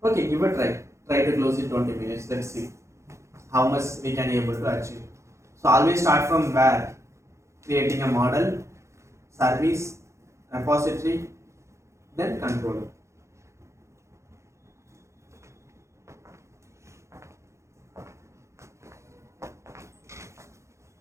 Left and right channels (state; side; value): late; left; 0.14 ms